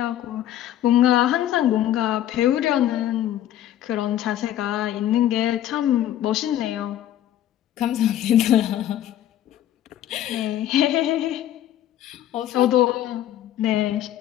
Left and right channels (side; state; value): right; quieter; 12.2 dB